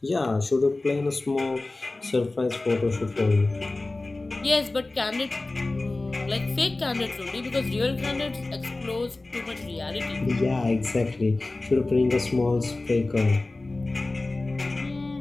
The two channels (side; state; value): right; quieter; 3.1 dB